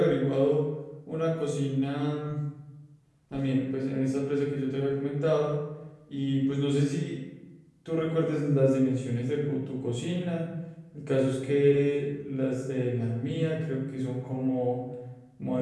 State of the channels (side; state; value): both; identical; correlation 1.00